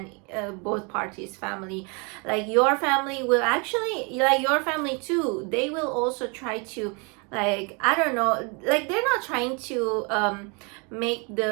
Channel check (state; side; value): quieter; left; 32.5 dB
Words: both parties family. Like your family will actually, like your family too, they will also try to, like, I don't know, like they're not trying to make